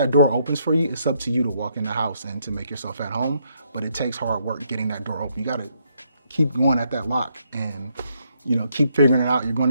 door opens for you, it's up to you to walk in the house and to make yourself at home, but it takes hard work getting that door open. You gotta keep going at that lock and keep figuring it out. You're going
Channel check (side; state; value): both; inverted; correlation -0.73